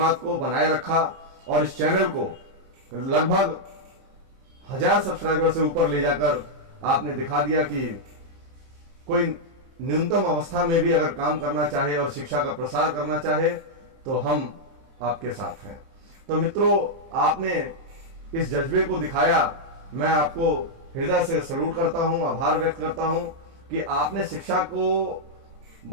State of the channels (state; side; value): late; left; 30 ms